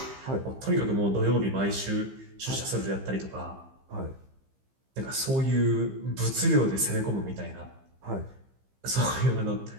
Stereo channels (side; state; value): left; late; 15 ms